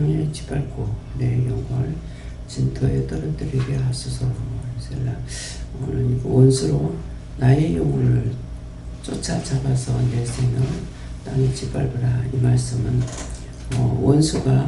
짓밟고 내 영혼을 진토에 떨어뜨리게 하소서. 오늘 원수로 나의 영혼을 쫓아잡아서 내 생명을 땅에 짓밟으라. 이 말씀은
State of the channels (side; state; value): both; identical; correlation 1.00